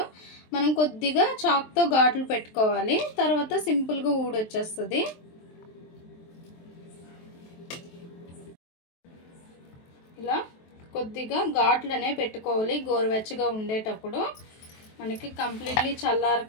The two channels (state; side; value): late; right; 23 ms